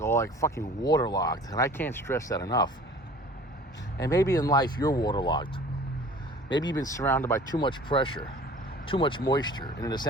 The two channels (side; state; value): both; normal; correlation 0.47